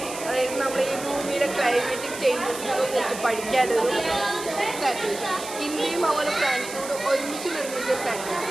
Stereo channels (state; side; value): noise; right; hiss, 11 dB below the sound